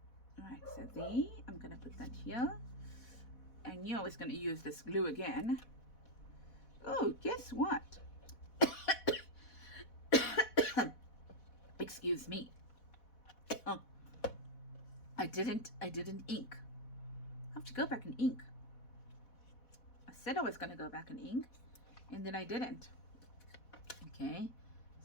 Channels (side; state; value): right; late; 4.1 ms